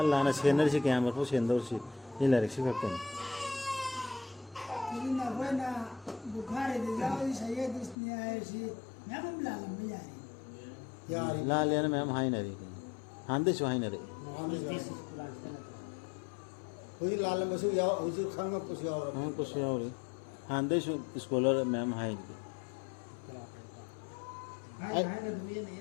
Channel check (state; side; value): drops out; right; at 8.0 s